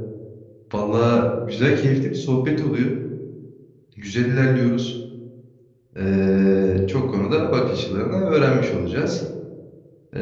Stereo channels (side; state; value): both; identical; correlation 1.00